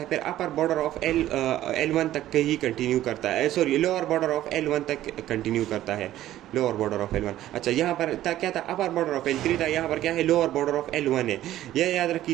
फिर अपर बॉर्डर ऑफ L1 तक ही कंटिन्यू करता है, sorry lower border of L1 तक कंटिन्यू करता है, लोअर बॉर्डर ऑफ L1। अच्छा, यहाँ पर क्या था, अपर बॉर्डर ऑफ L3 था, यहाँ पर क्या है, लोअर बॉर्डर ऑफ L1 है। यह याद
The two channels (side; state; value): left; quieter; 13.6 dB